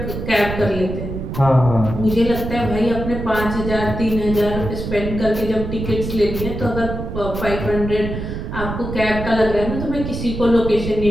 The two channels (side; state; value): right; noise; rumble, 6 dB below the sound